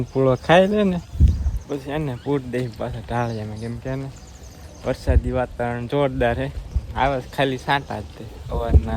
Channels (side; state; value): both; identical; correlation 1.00